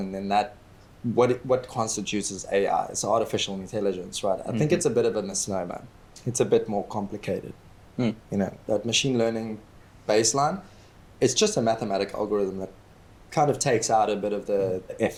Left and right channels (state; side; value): identical; both; correlation 1.00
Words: then what constitutes as AI is artificial intelligence, right? I think it's a bit of a misnomer. It's a bit more complicated. That machine learning baseline, it's just a mathematical algorithm that kind of takes out a bit of the